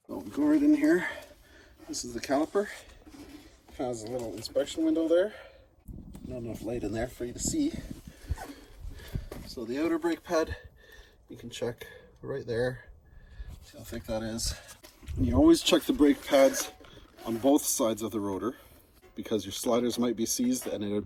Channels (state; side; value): identical; both; correlation 1.00